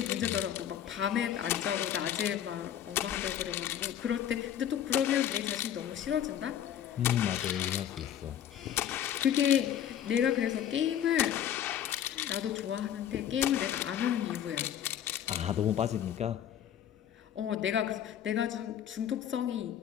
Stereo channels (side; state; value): right; quieter; 10.2 dB